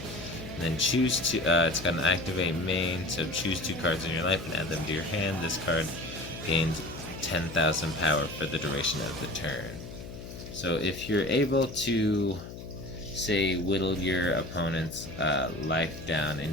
And then choose to, it's got an activate main, so choose 2 cards in your life and add them to your hand. This card gains 10,000 power for the duration of the turn. So if you're able to, say, whittle your opponent's life down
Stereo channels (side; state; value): left; noise; hum, 12 dB below the sound